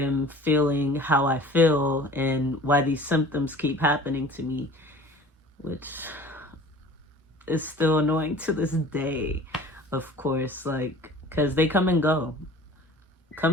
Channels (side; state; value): both; normal; correlation 0.45